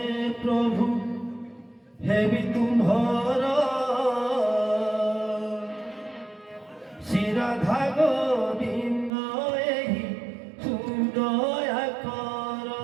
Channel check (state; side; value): drops out; left; at 9.1 s